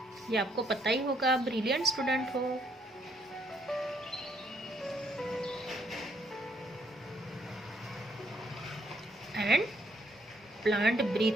ये आपको पता ही होगा, ब्रिलियंट स्टूडेंट हो। And plant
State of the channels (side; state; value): both; normal; correlation 0.69